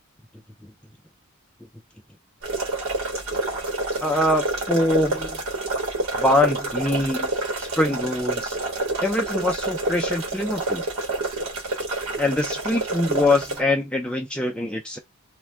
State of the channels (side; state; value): both; normal; correlation 0.41